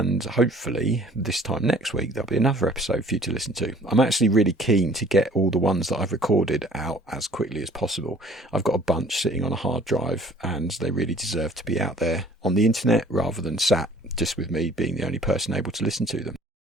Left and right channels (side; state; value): both; normal; correlation 0.53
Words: hopefully this time next week there'll be another episode for you to listen to. I'm actually really keen to get all the ones that I've recorded out as quickly as possible. I've got a bunch sitting on a hard drive and they really deserve to be out there on the internet rather than sat just with me being the only person able to listen to them.